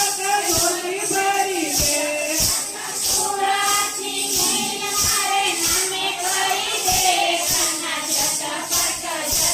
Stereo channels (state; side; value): identical; both; correlation 1.00